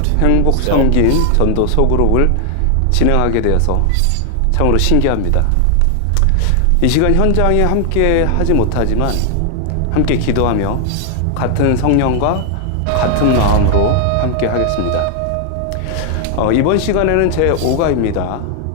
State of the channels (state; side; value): different; both; correlation 0.00